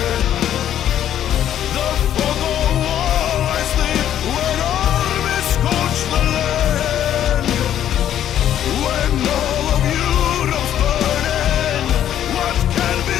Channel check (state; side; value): quieter; right; 10.8 dB